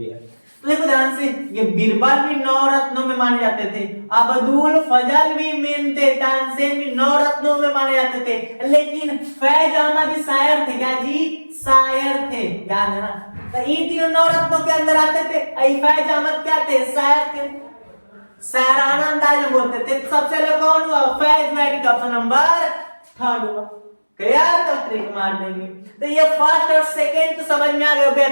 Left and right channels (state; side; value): inverted; both; correlation -1.00